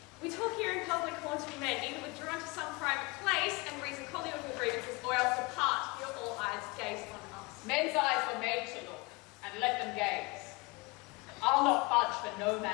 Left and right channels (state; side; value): quieter; right; 25.9 dB